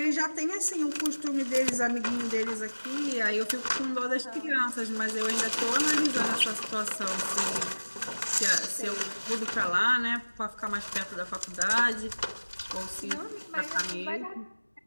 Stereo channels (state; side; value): inverted; both; correlation -1.00